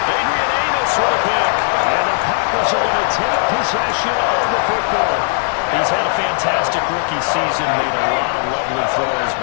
Adrian Amos with a pick. And the Packers are going to take possession of the football. He's had a fantastic rookie season, made a lot of lovely throws,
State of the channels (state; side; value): silent; right; 68 dB below the other